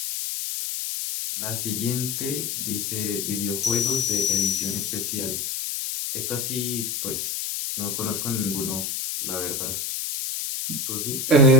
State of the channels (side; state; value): left; noise; hiss, 3 dB below the sound